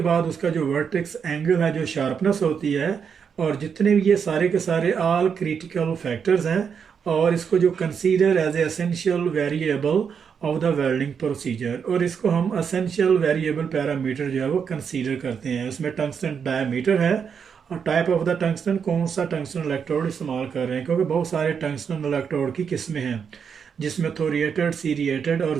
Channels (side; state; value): left; quieter; 6.8 dB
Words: बाद उसका जो वर्टेक्स एंगल है, जो शार्पनेस होती है, और जितने भी ये सारे के सारे ऑल क्रिटिकल फैक्टर्स हैं, और इसको जो consider as a essential variable of the welding procedure, और इसको हम एसेंशियल वेरिएबल पैरामीटर जो है वो कंसीडर करते हैं। उसमें टंगस्टन डायमीटर है और टाइप ऑफ द टंगस्टन, कौन सा टंगस्टन इलेक्ट्रोड इस्तेमाल कर रहे हैं, क्योंकि बहुत सारे टंगस्टन इलेक्ट्रोड की किस्में हैं जिसमें थोरिएटेड, सीरिएटेड और